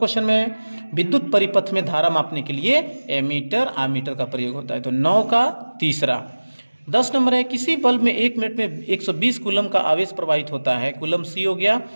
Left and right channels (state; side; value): inverted; both; correlation -1.00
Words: में विद्युत परिपथ में धारा मापने के लिए एमीटर आमीटर का प्रयोग होता है। तो 9 का तीसरा। 10 नंबर है, किसी बल्ब में 1 मिनट में 120 कूलम का आवेश प्रवाहित होता है। कूलम सी हो गया,